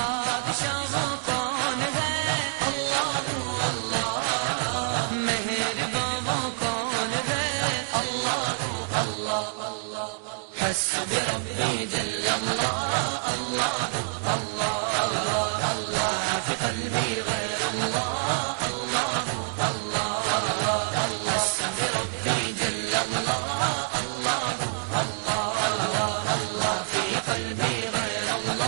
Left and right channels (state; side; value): silent; left; digital silence